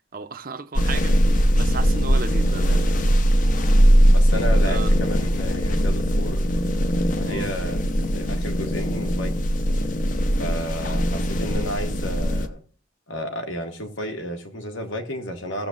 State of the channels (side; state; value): both; normal; correlation 0.89